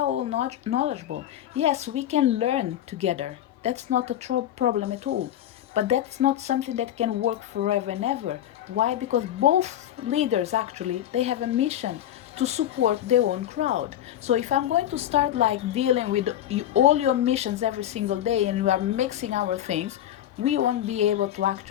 all knowledgeable. Yes, we can learn together. That's not a problem at all. But that's not something that can work forever and ever. Why? Because both leaders actually, they have a mission to support their own crowd. So if I'm going to start like dealing with all your missions every single day and you are mixing our things, we won't be able to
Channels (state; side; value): quieter; right; 11.8 dB